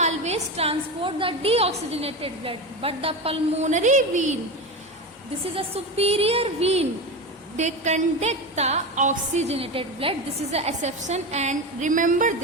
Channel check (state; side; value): normal; both; correlation 0.22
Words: transport the deoxygenated blood, but the pulmonary vein, this is a superior vein, they conduct the oxygenated blood. This is the exception, and remember